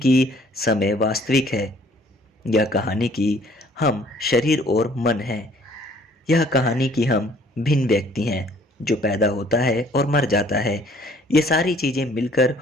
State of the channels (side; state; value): both; normal; correlation 0.58